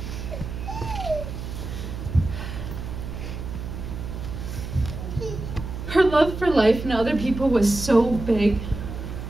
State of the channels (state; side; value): noise; right; hum, 8 dB below the sound